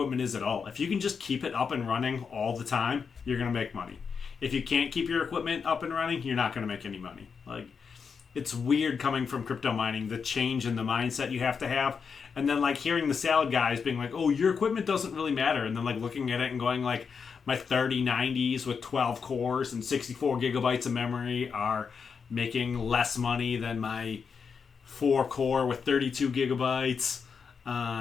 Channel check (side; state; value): right; quieter; 5.9 dB